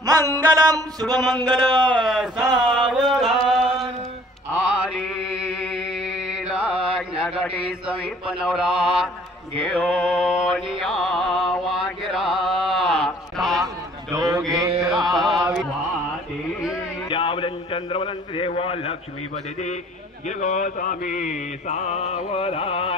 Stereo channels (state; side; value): normal; both; correlation 0.54